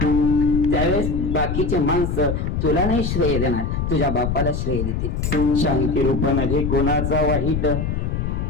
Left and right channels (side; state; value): left; noise; rumble, 1 dB below the sound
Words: त्यावेळेस बाकीचे माणसं तुला नाही श्रेय देणार, तुझ्या बापाला श्रेय देतील. शांती रूप नव्हे कोणाचा वाईट,